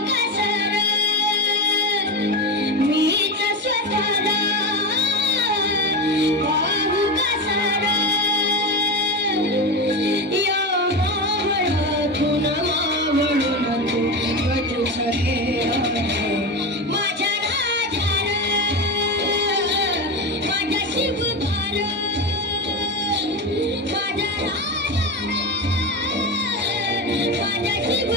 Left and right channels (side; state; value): both; normal; correlation 0.19